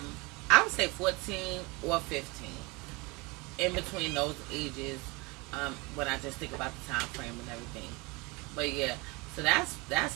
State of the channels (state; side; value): quieter; left; 26.1 dB